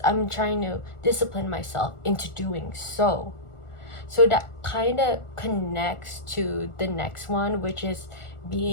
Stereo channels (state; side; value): late; right; 1.4 ms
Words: I'm trying to discipline myself into doing so. So that kind of connects to the next one, which is